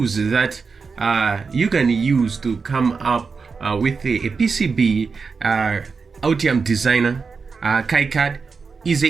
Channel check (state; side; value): quieter; left; 5.0 dB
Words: that you can use to come up with a PCB, Altium Designer, KiCad,